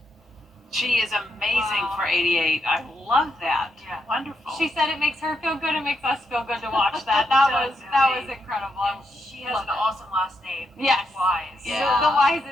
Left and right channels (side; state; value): both; normal; correlation 0.81